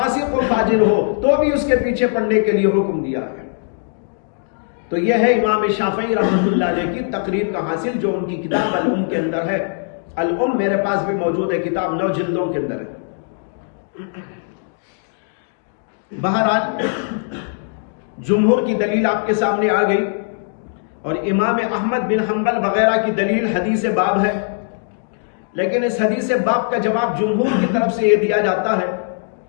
و فاجر ہو تو بھی اس کے پیچھے پڑھنے کے لیے حکم دیا ہے. تو یہ ہے امام شافعی رحمۃ اللہ علیہ کی تقریر کا حاصل جو ان کی کتاب الام کے اندر ہے. الام میرے پاس بھی موجود ہے، کتاب 9 جلدوں کے اندر ہے. بہرحال جمہور کی دلیل آپ کے سامنے آ گئی اور امام احمد بن حنبل وغیرہ کی دلیل حدیث باب ہے. لیکن اس حدیث باب کا جواب جمہور کی طرف سے یہ دیا جاتا ہے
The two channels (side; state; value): right; silent; 66 dB below the other